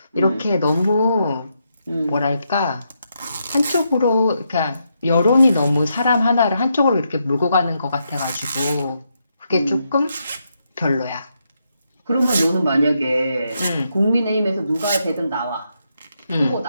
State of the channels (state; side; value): inverted; both; correlation -0.81